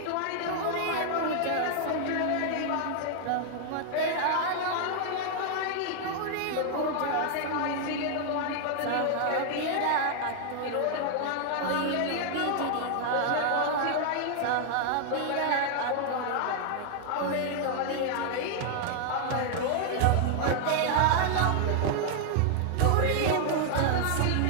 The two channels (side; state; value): both; different; correlation 0.00